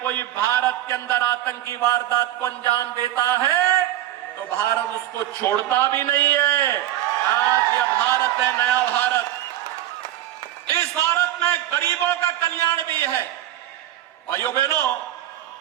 कोई भारत के अंदर आतंकी वारदात को अंजाम देता है तो भारत उसको छोड़ता भी नहीं है। आज यह भारत है, नया भारत। इस भारत में गरीबों का कल्याण भी है। भाइयों बहनों,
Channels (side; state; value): left; quieter; 13.5 dB